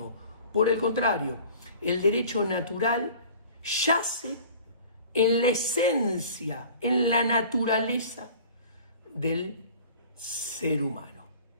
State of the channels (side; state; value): both; inverted; correlation -0.44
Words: Por el contrario, el derecho natural yace en la esencia, en la naturaleza del ser humano.